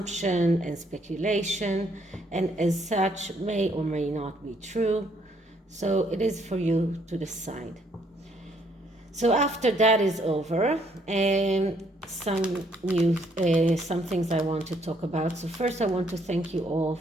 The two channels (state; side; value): normal; both; correlation 0.68